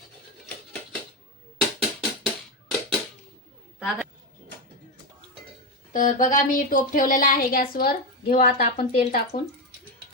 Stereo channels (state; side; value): normal; both; correlation 0.12